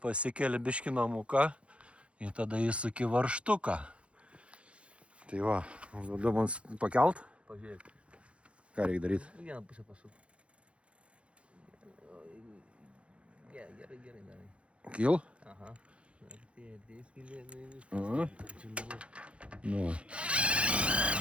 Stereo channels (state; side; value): late; left; 0.060 ms